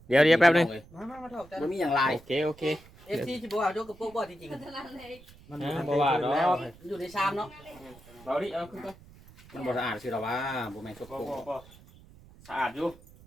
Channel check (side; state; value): right; noise; rumble, 23 dB below the sound